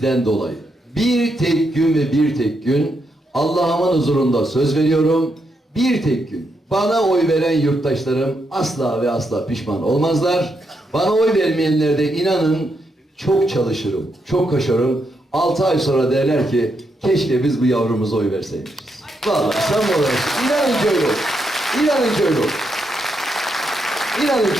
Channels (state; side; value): normal; both; correlation 0.81